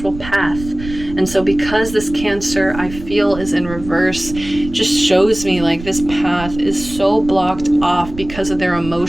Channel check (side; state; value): right; noise; rumble, 12 dB below the sound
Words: path. And so because this Cancer, I feel, is in reverse, just shows me like this path is so blocked off because of their